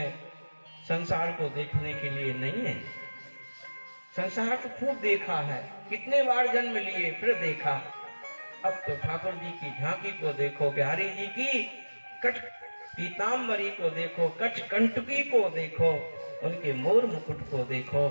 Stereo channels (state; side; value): inverted; both; correlation -1.00